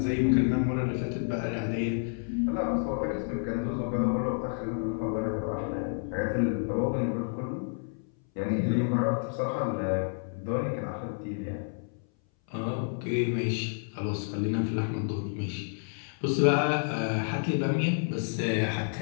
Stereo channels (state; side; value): silent; right; 58 dB below the other